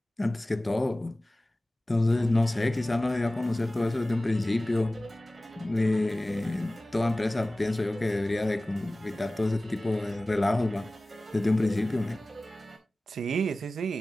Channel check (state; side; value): normal; both; correlation 0.97